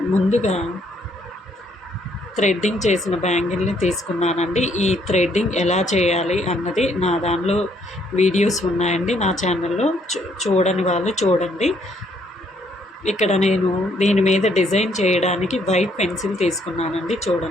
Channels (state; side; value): normal; both; correlation 0.69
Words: ముందుగా థ్రెడ్డింగ్ చేసిన బ్యాంగిల్ని తీసుకున్నానండి. ఈ థ్రెడ్డింగ్ ఎలా చేయాలి అన్నది నా దానిలో వీడియోస్ ఉన్నాయండి నా ఛానల్లో. చూడని వాళ్ళు చూడండి. ఇక్కడ నేను దీని మీద డిజైన్ చేయడానికి వైట్ పెన్సిల్ తీసుకున్నానండి.